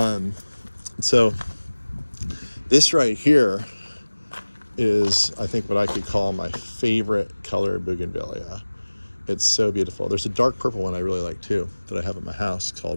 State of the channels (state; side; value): inverted; both; correlation -1.00